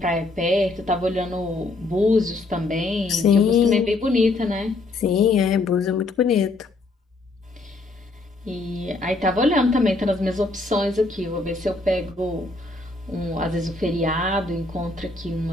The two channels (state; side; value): quieter; right; 3.1 dB